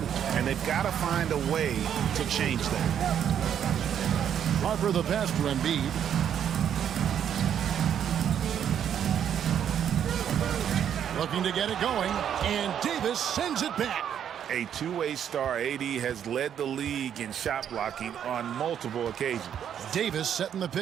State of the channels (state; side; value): quieter; left; 9.1 dB